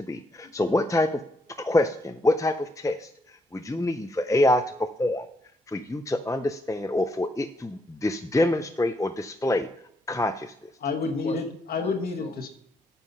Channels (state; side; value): normal; both; correlation 0.76